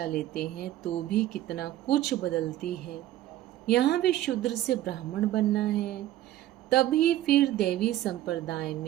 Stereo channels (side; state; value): left; quieter; 14.0 dB